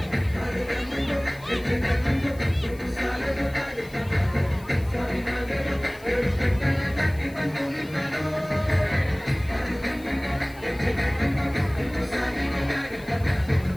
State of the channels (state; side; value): noise; left; hiss, 23 dB below the sound